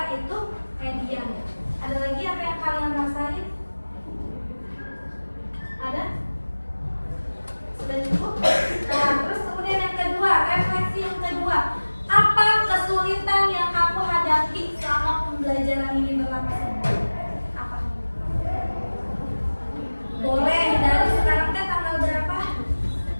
itu median. Ada lagi apa yang kalian rasain? Ada? Sudah cukup? Nah, terus kemudian yang kedua, refleksi yang kedua. Apa kesulitan yang kamu hadapi selama pembelajaran ini berlangsung? Apa? Boleh, dari sekarang kan tanggal berapa?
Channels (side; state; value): both; inverted; correlation -1.00